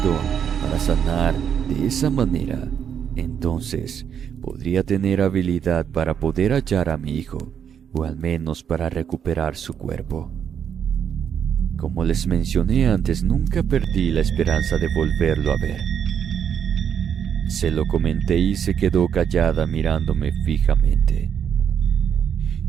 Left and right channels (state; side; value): quieter; left; 8.2 dB